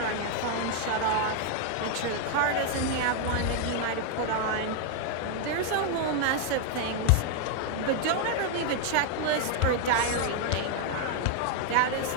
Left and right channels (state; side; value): different; both; correlation 0.00